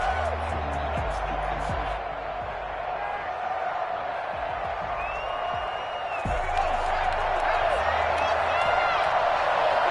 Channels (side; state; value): both; identical; correlation 1.00